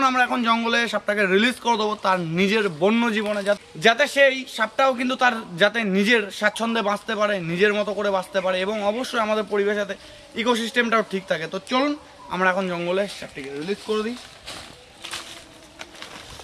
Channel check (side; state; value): both; identical; correlation 1.00